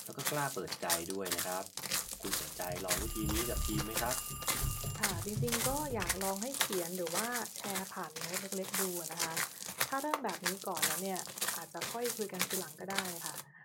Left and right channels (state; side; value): identical; both; correlation 1.00